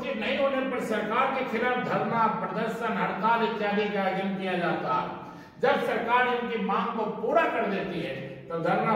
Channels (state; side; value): identical; both; correlation 1.00